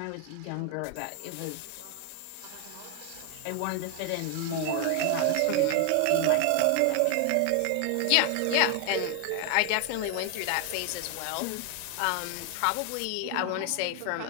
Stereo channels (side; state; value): both; different; correlation 0.00